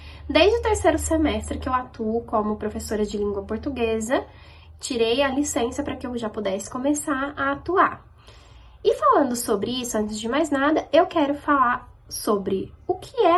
Desde o terceiro semestre que eu atuo como professora de língua portuguesa, tirei a licença para que eu já pudesse começar a atuar. E falando sobre isso, antes de mais nada, eu quero falar sobre o que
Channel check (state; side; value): identical; both; correlation 1.00